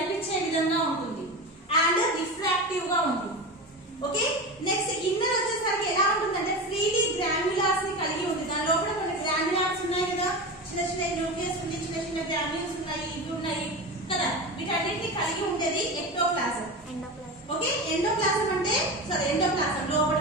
విధంగా ఉంటుంది, అండ్ రిఫ్రాక్టివ్ గా ఉంటుంది. ఓకే, నెక్స్ట్ ఇన్నర్ వచ్చేసరికి ఎలా ఉంటుందంటే ఫ్రీలీ గ్రాన్యులాస్ ని కలిగి ఉంటుంది. దాని లోపల కొన్ని గ్రాన్యులాస్ ఉన్నాయి కదా, చిన్న చిన్న న్యూక్లియస్ ఉంది, చిన్న చిన్న గ్రాన్యుల్స్ ఉన్నాయి, ఇవి ఉన్నాయి కదా, వీటన్నిటిని కలిగి ఉండేది ఎక్టోప్లాజం. ఓకే, ఎండోప్లాజం అంటే ఎండోప్లాజం లోపల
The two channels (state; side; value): normal; both; correlation 0.25